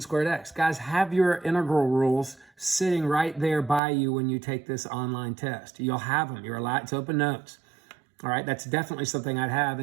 squared x? Guys, have your integral rules sitting right there by you when you take this online test. You'll have them. You're allowed. It's open notes. All right, that's definitely something I'd have.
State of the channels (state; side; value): drops out; left; at 3.8 s